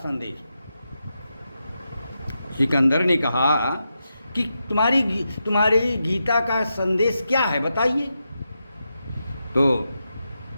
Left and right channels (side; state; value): both; inverted; correlation -0.87